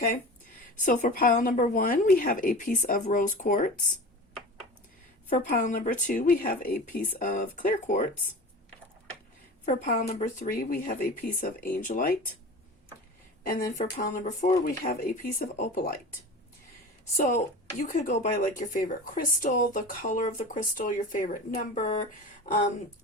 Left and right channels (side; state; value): both; normal; correlation 0.34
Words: So for pile number 1, we have a piece of rose quartz. For pile number 2, we have a piece of clear quartz. For pile number 3, we have a piece of angelite. And then for pile number 4, we have a piece of opalite. So you could go by like your favorite crystal, the color of the crystal, your favorite number,